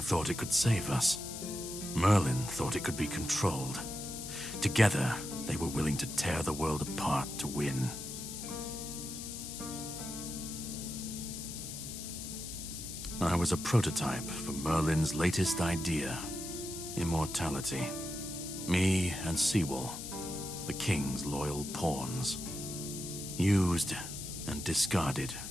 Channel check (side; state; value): left; noise; hiss, 8 dB below the sound